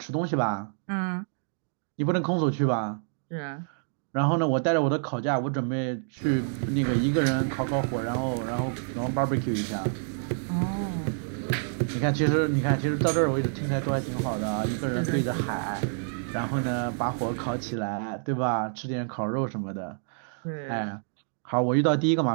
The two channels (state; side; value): silent; left; digital silence